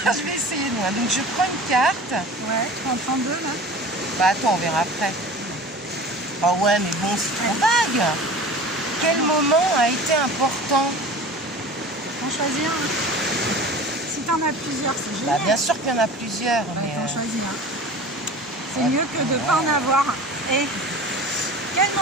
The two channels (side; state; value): both; normal; correlation 0.38